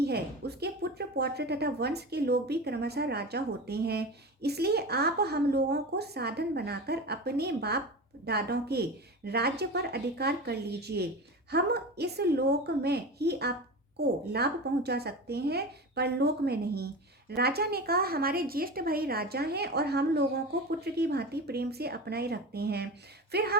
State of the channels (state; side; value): normal; both; correlation 0.28